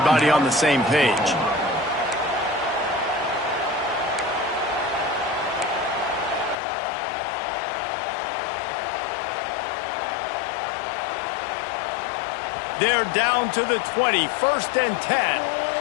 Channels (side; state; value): right; drops out; at 6.6 s